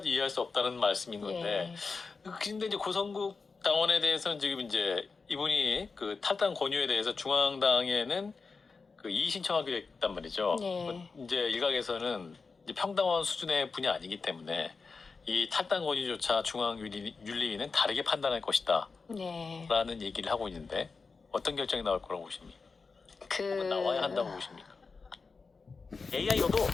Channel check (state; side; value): quieter; right; 4.5 dB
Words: 이해할 수 없다는 말씀인 건데. 근데 이제 고성국 당원에 대해서는 지금 이제 이분이 그 탈당 권유에 대해서 중앙당에는 그 이의 신청하기로 했단 말이죠. 이제 일각에서는 이제 평당원 수준의 분이 아니기 때문에 이 탈당 권유조차 중앙 윤리위는 다르게 판단할 것이다. 라는 얘기를 하고 있는데 어떤 결정이 나올 거라고 보십니까? 그 혹은 나와야 한다고 보십니까? AI로도